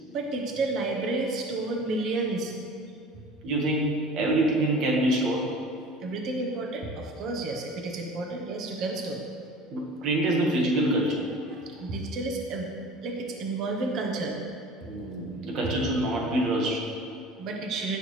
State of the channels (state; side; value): normal; both; correlation 0.42